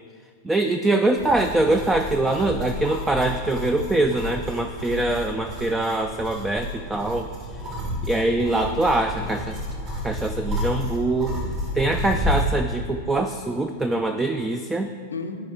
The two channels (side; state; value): both; normal; correlation 0.60